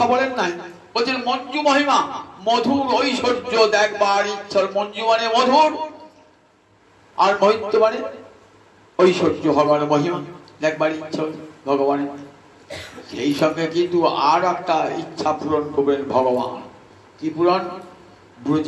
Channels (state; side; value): identical; both; correlation 1.00